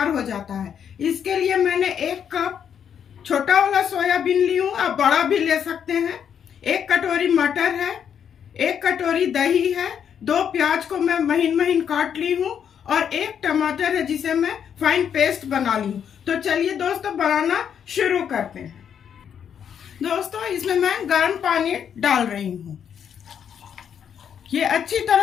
हो जाता है। इसके लिए मैंने 1 कप छोटा वाला सोयाबीन ली हूँ, आप बड़ा भी ले सकते हैं। 1 कटोरी मटर है, 1 कटोरी दही है, 2 प्याज को मैं महीन महीन काट ली हूँ और 1 टमाटर है जिसे मैं फाइन पेस्ट बना ली हूँ। तो चलिए दोस्तों बनाना शुरू करते हैं। दोस्तों इसमें मैं गर्म पानी डाल रही हूँ। ये अच्छी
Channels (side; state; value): right; quieter; 8.2 dB